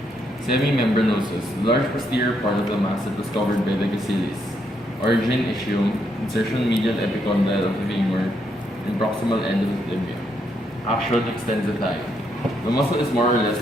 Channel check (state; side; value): normal; both; correlation 0.76